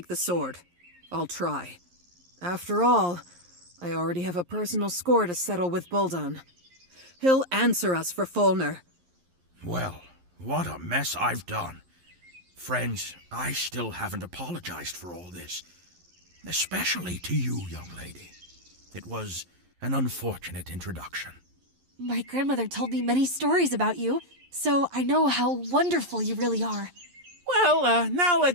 the sword. I'll try. After all, I already have a personal score to settle with Buldon. He'll answer us for Fulner. Well, what a mess I've done. Friends, I still haven't apologized for all this. Especially to you, young lady. It was an unfortunate introduction. My grandmother told me many stories about you, so I know how wonderful you really are. Well, now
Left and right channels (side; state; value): left; late; 11 ms